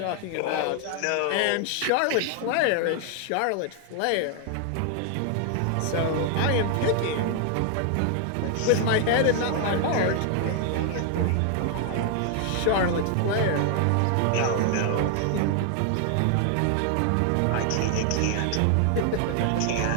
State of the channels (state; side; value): different; both; correlation 0.00